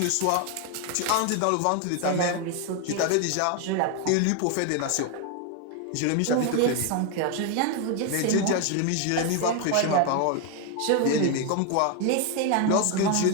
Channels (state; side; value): different; both; correlation 0.01